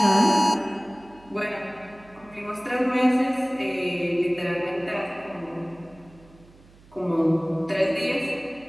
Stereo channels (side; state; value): right; noise; hum, 25 dB below the sound